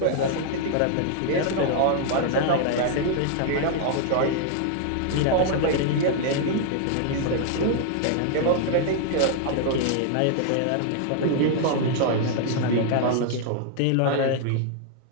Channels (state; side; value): different; both; correlation 0.00